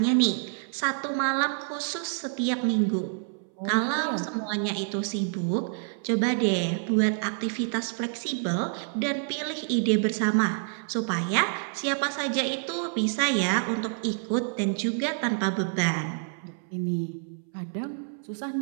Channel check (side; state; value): left; silent; 60 dB below the other